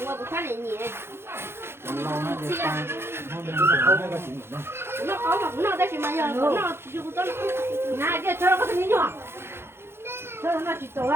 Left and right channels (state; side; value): late; left; 0.12 ms